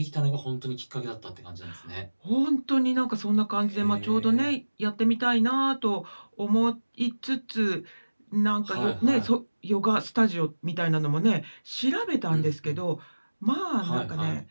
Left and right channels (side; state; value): both; inverted; correlation -1.00